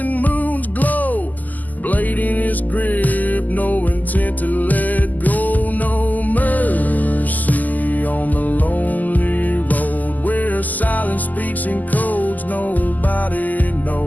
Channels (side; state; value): right; late; 0.082 ms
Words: moon's glow. Blade in his grip, no intent to let go. No mercy on the lonely road where silence speaks in codes nobody